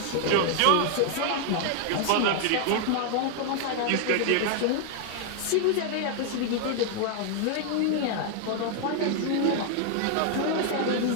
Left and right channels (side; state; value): both; different; correlation 0.00